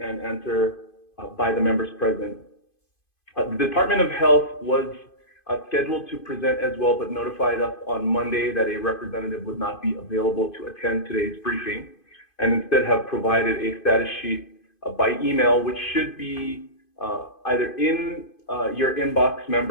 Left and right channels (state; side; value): late; right; 2.5 ms